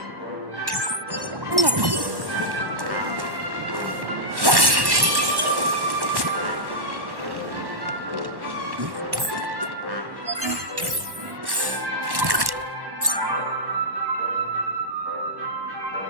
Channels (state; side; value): late; left; 1.1 ms